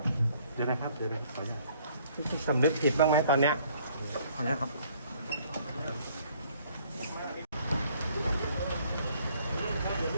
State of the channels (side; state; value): both; inverted; correlation -0.61